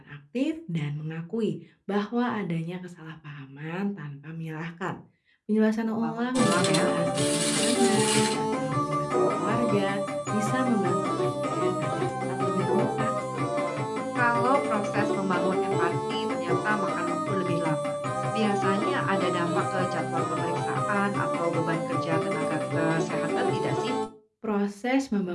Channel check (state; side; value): identical; both; correlation 1.00